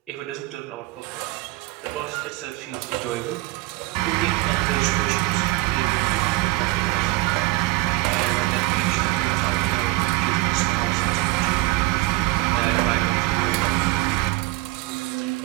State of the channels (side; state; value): left; quieter; 20.0 dB